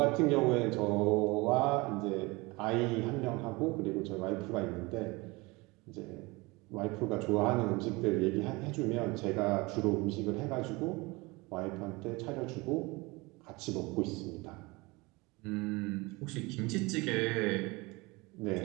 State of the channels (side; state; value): left; quieter; 24.3 dB